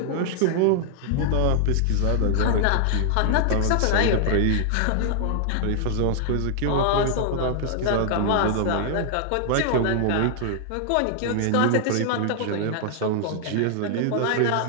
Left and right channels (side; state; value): both; different; correlation -0.01